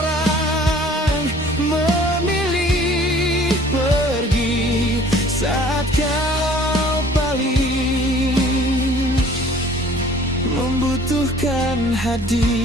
memilih pergi saat kau paling membutuhkan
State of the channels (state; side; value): normal; both; correlation 0.52